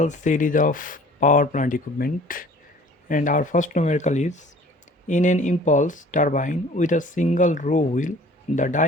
series of power plant equipment, and our first numerical is in an impulse turbine with a single row wheel. The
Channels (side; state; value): both; normal; correlation 0.49